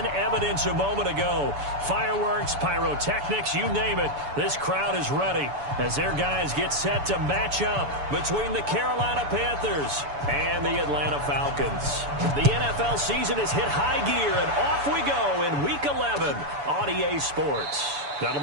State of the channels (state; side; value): late; left; 7.0 ms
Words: evidence a moment ago. Fireworks, pyrotechnics, you name it. This crowd is ready as their guys get set to match up between the Carolina Panthers and the Atlanta Falcons. The NFL season has hit high gear, and off we go in Week 11 on EA Sports. That'll